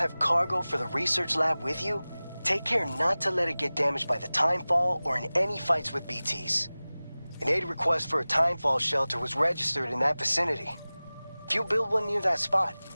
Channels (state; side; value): inverted; both; correlation -0.98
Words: cargo for the research lab with you, take care not to let it get damaged by the timefall or in any fights with BTs. An aid request for a timefall shelter was registered in that vicinity. If you build one near that spot,